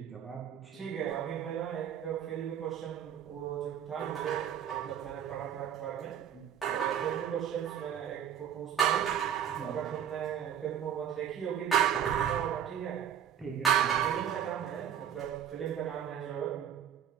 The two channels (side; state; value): left; quieter; 9.3 dB